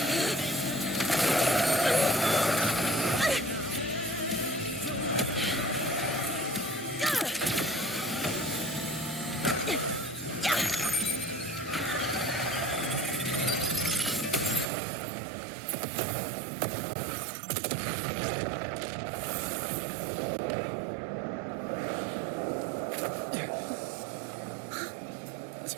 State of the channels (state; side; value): drops out; left; at 14.7 s